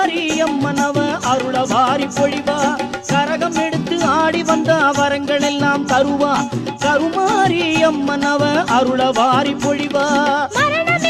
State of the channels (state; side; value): identical; both; correlation 1.00